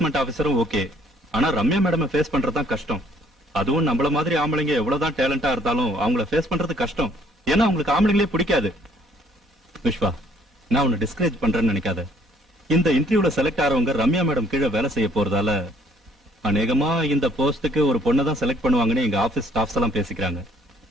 ஆபீசரும் ஓகே. ஆனா ரம்யா மேடம் ஃபேஸ் பண்றதுதான் கஷ்டம். அதுவும் நம்மள மாதிரி ஆம்பளைங்க எவ்வளவுதான் டேலண்டா இருந்தாலும் அவங்கள ஃபேஸ் பண்றது கஷ்டம். ஏன்னா அவங்களுக்கு ஆம்பளைங்களே பிடிக்காது. விஸ்வா, நான் உன்னை டிஸ்கரேஜ் பண்றேன்னு நினைக்காத. இந்த இன்டர்வியூல செலக்ட் ஆறவங்க ரம்யா மேடம் கீழே வேலை செய்ய போறதால அநேகமா இந்த போஸ்டுக்கு ஒரு பொண்ணை தான் செலக்ட் பண்ணுவாங்கன்னு எங்க ஆபீஸ் ஸ்டாஃப்ஸ் எல்லாம் பேசிக்கிறாங்க.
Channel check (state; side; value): normal; both; correlation 0.62